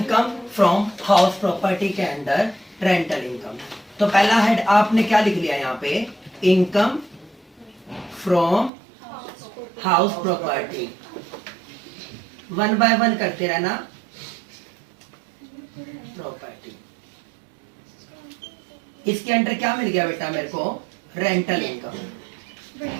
from house property के अंदर रेंटल इनकम। तो पहला हेड आपने क्या लिख लिया यहाँ पे? Income from house property. One by one करते रहना। प्रॉपर्टी, इसके अंडर क्या मिल गया बेटा मेरे को? Rental income.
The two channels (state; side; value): drops out; left; at 8.7 s